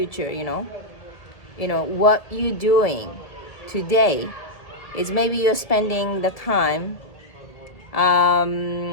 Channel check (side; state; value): right; late; 1.8 ms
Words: what you're doing today is maybe you're spending the time